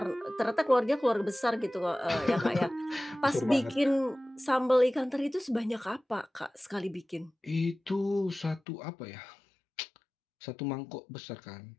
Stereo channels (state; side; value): drops out; right; at 8.6 s